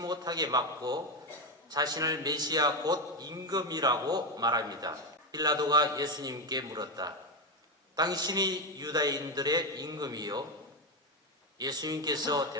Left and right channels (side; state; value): both; normal; correlation 0.11